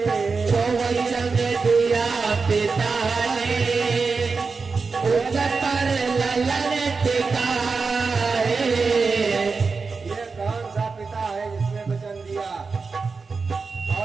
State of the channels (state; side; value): quieter; left; 4.6 dB